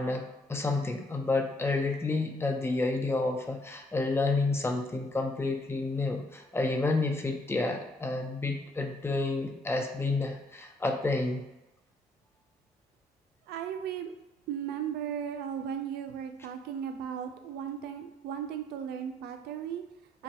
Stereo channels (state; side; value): normal; both; correlation 0.69